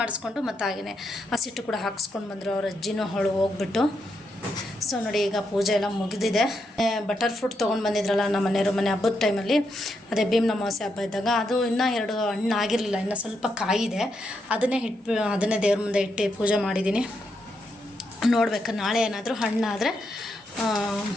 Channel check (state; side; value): normal; both; correlation 0.81